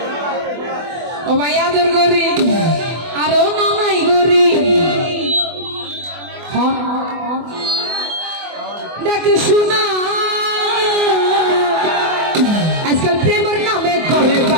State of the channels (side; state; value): left; late; 24 ms